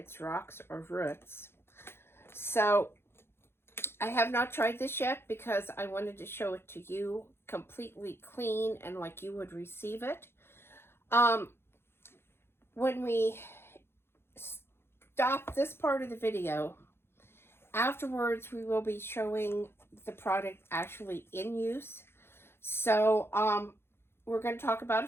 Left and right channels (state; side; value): late; right; 0.11 ms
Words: rocks or roots. So I have not tried this yet because I wanted to show it to you completely clean and like you would receive it. When we stop this part of the video, afterwards we will be showing the product actually in use. So we're going to talk about